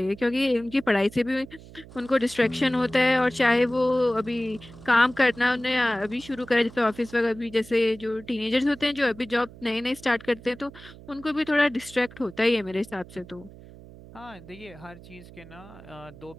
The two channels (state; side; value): noise; right; hum, 19 dB below the sound